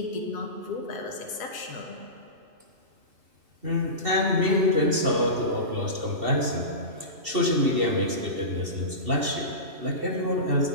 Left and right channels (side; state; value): left; late; 2.7 ms